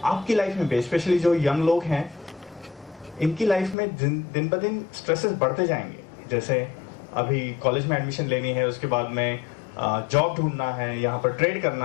आपकी लाइफ में स्पेशली जो यंग लोग हैं, इनकी लाइफ में दिन ब दिन स्ट्रेसेस बढ़ते जाएंगे। जैसे अभी कॉलेज में एडमिशन लेनी है, उसके बाद में जॉब ढूंढना है, यहाँ पर ट्रेड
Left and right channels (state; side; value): drops out; right; at 3.8 s